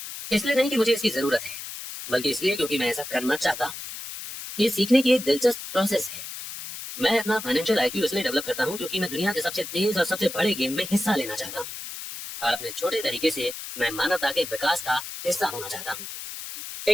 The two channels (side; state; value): left; noise; hiss, 9 dB below the sound